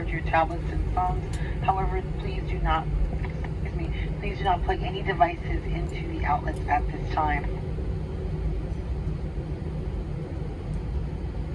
your tablets and phones. However, please do not plug any devices into the outlets at this time.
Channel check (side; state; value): both; identical; correlation 1.00